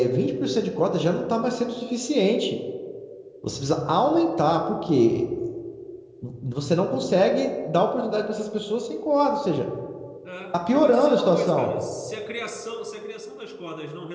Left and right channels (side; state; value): both; identical; correlation 1.00